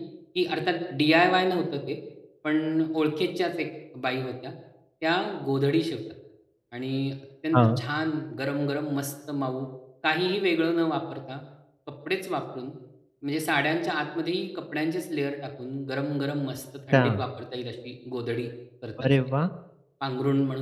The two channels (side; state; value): both; identical; correlation 1.00